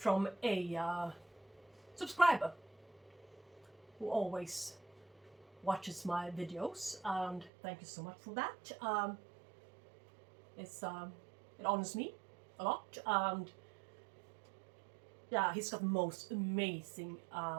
a subscriber who always watches my videos, and thank you so much for that. It honors me a lot, and he's got the most amazing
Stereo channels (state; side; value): drops out; left; at 7.5 s